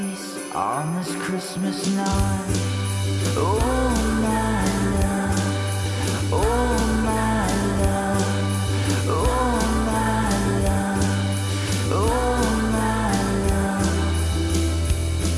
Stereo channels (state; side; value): identical; both; correlation 1.00